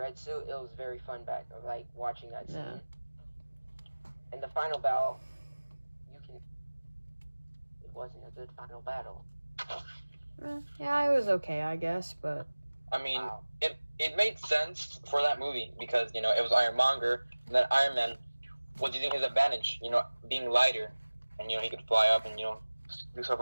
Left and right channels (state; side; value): inverted; both; correlation -1.00